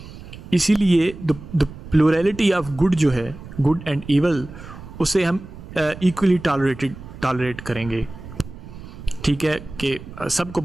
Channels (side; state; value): right; noise; rumble, 15 dB below the sound